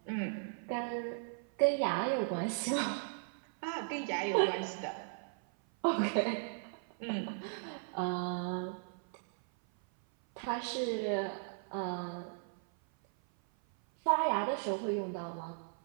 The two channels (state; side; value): silent; left; 53 dB below the other